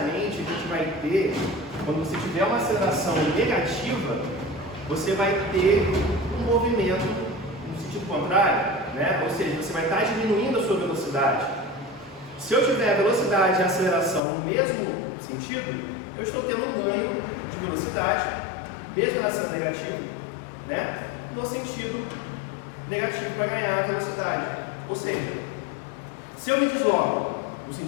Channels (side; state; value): right; drops out; at 14.2 s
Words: a gente vai ter, quando você tiver uma aceleração negativa, você vai ter um movimento no sentido contrário, né? Ou seja, você vai estar diminuindo a sua velocidade. Se eu tiver a velocidade e a aceleração no mesmo sentido, eu estou tendo um ganho de velocidade, mesmo ela sendo negativa, né? No sentido negativo para ganhar a velocidade. Ou seja, se eu me desloco no